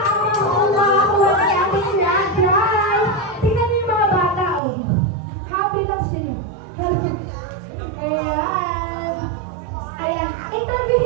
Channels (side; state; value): left; drops out; at 4.6 s